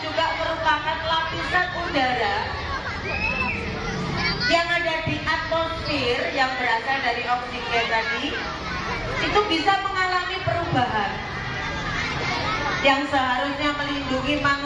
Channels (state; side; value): identical; both; correlation 1.00